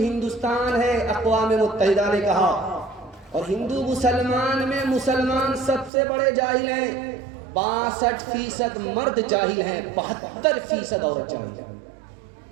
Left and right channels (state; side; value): drops out; left; at 5.9 s